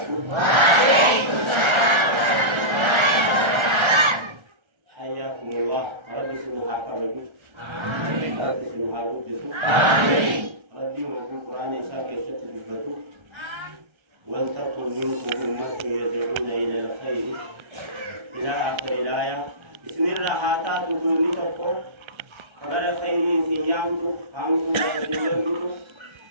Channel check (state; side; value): late; left; 1.3 ms